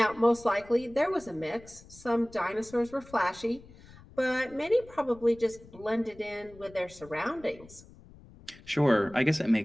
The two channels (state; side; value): noise; left; rumble, 22 dB below the sound